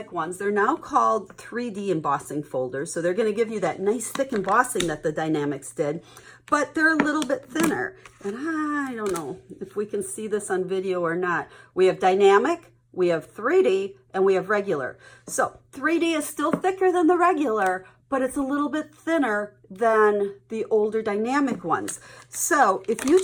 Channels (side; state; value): both; identical; correlation 1.00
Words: ones, they're now called 3D embossing folders. So they're going to give you that nice thick embossing that the dynamics did, but they're a little bit thinner. And I don't know if we can see this on video or not. We have dynamic, we have 3D, and we have regular. So 3D is still thicker than the regular, but it's a little bit thinner than the older dynamic ones. So if